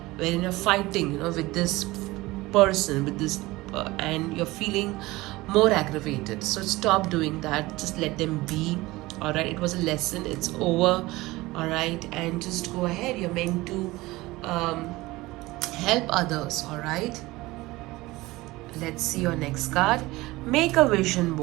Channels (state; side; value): quieter; left; 20.0 dB